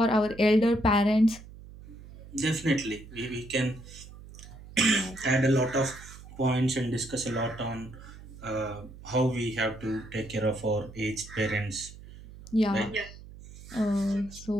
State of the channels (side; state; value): right; noise; hum, 17 dB below the sound